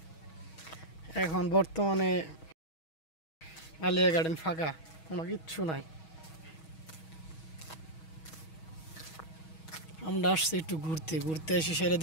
এখন বর্তমানে আলিয়া গার্ডেন ফাঁকা, কোনো কিচ্ছু নাই। আমরা আসছি একটু ঘুরতে, ঘুরতে এসে সেরে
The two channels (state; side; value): late; right; 6.3 ms